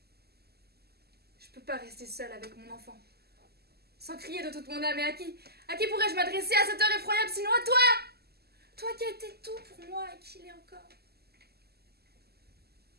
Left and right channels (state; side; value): late; left; 0.46 ms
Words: Je peux pas rester seule avec mon enfant. Sans crier de toute mon âme. Et à qui pourrais-je m'adresser à cette heure effroyable sinon à toi? Toi qui as été tout pour moi et qui l'est encore.